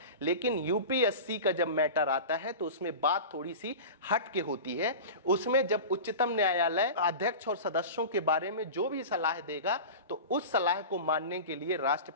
लेकिन यूपीएससी का जब मैटर आता है तो उसमें बात थोड़ी सी हट के होती है। उसमें जब उच्चतम न्यायालय अध्यक्ष और सदस्यों के बारे में जो भी सलाह देगा तो उस सलाह को मानने के लिए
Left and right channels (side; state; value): both; inverted; correlation -0.31